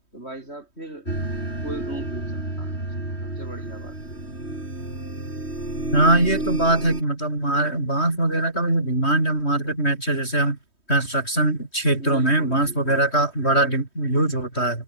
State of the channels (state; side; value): late; right; 3.1 ms